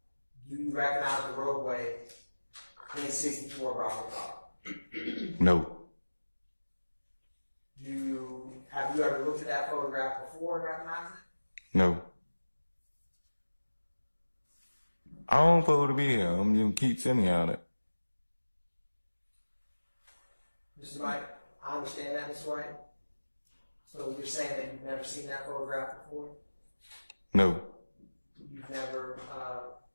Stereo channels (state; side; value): inverted; both; correlation -1.00